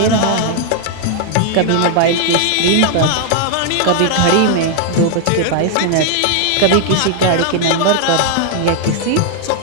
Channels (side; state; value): both; different; correlation 0.00